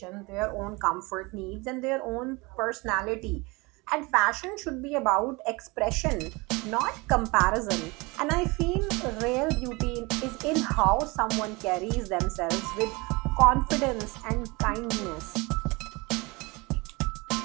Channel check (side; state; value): left; quieter; 25.5 dB